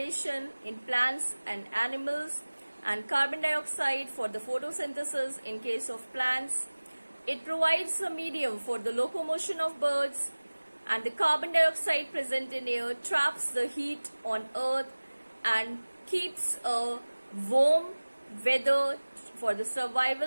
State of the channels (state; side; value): inverted; both; correlation -1.00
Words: in plants and animals and carbon dioxide for the photosynthesis in case of plants. It provides a medium for the locomotion of birds, and the carbon dioxide present in air traps the heat on earth and keeps a warm weather for the